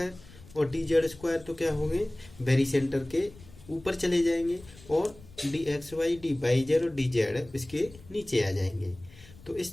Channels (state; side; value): noise; left; rumble, 21 dB below the sound